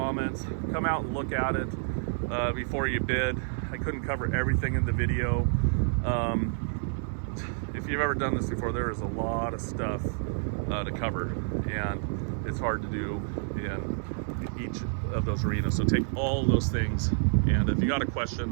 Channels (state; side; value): silent; left; digital silence